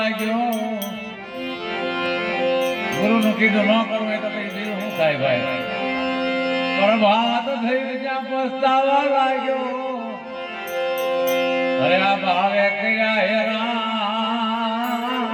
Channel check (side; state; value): both; identical; correlation 1.00